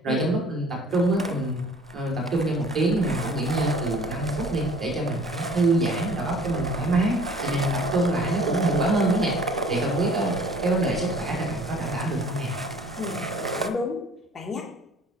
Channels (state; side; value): normal; both; correlation 0.51